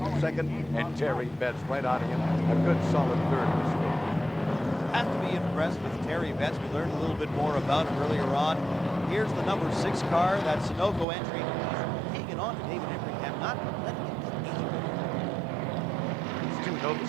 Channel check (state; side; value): drops out; left; at 11.1 s